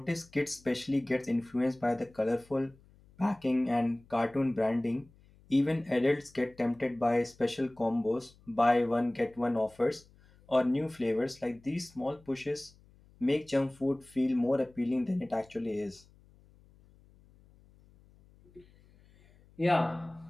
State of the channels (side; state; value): left; noise; hum, 28 dB below the sound